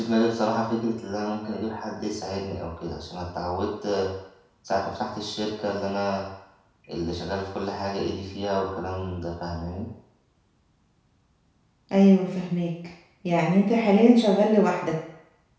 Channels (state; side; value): identical; both; correlation 1.00